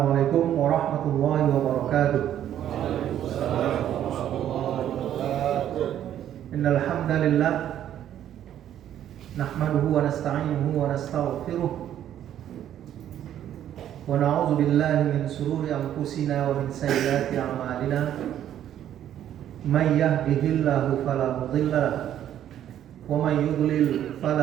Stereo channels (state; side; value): quieter; left; 10.9 dB